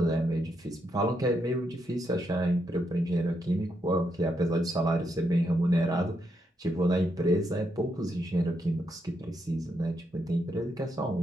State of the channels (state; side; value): normal; both; correlation 0.80